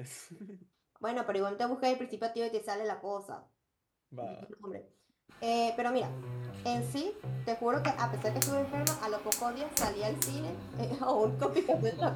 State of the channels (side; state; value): both; identical; correlation 1.00